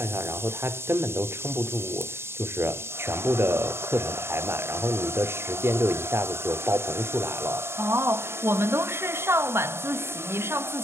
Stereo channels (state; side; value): late; left; 0.12 ms